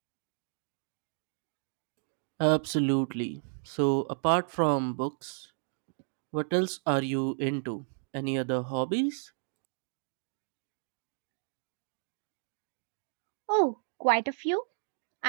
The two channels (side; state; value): left; silent; digital silence